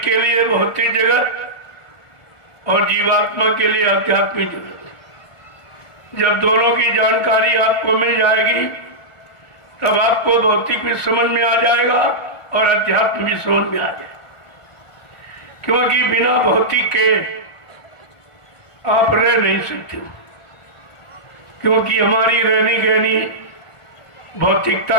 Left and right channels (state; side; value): late; right; 1.5 ms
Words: के लिए भौतिक जगत और जीवात्मा के लिए आध्यात्मिक जगत। जब दोनों की जानकारी आपको मिल जाएगी तब आपको भौतिक भी समझ में आ जाएगा और अध्यात्म भी समझ में आ जाएगा। क्योंकि बिना भौतिक के आप रह नहीं सकते, क्योंकि हमारी रहनी गहनी भौतिकता